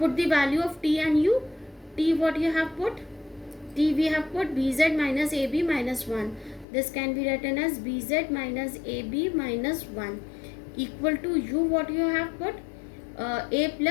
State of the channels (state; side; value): drops out; right; at 6.7 s